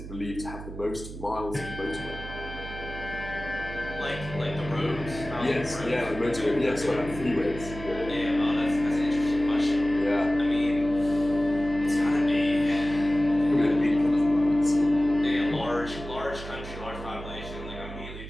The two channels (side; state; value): right; noise; hum, 11 dB below the sound